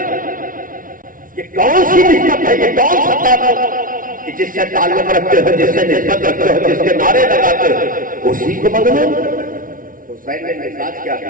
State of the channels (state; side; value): late; left; 0.39 ms